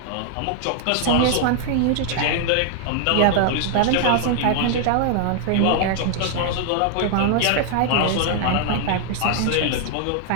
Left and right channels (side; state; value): both; different; correlation 0.00